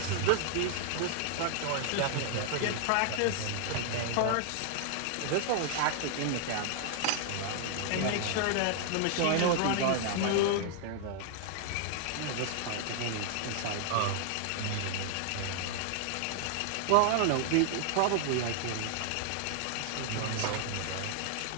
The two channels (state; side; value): different; both; correlation 0.00